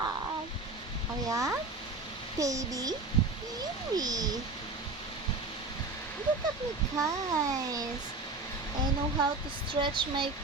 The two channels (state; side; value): quieter; left; 3.5 dB